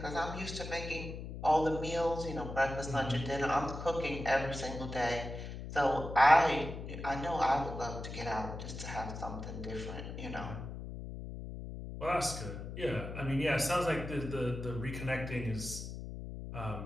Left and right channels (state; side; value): noise; left; hum, 8 dB below the sound